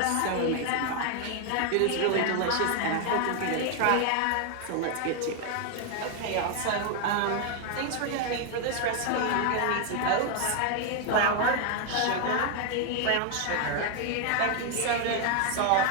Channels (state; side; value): different; both; correlation 0.00